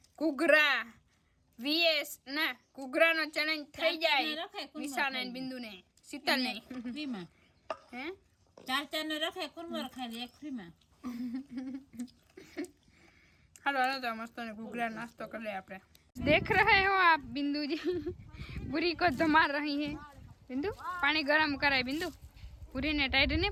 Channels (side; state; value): both; identical; correlation 1.00